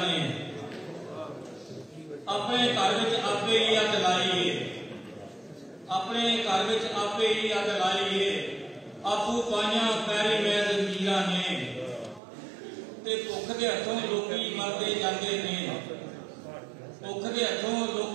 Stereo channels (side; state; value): left; drops out; at 12.2 s